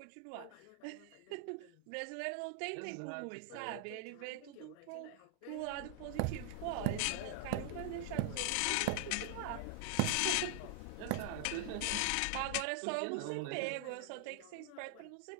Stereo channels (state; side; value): different; both; correlation 0.00